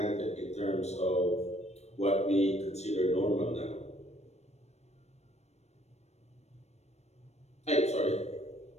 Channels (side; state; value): right; late; 0.31 ms